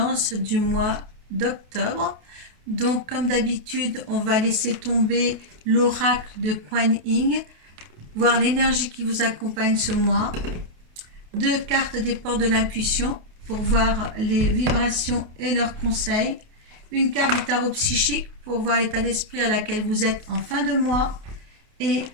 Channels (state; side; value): late; left; 28 ms